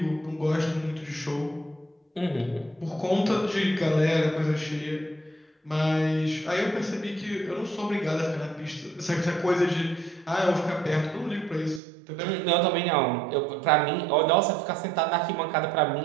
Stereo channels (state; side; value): drops out; left; at 11.8 s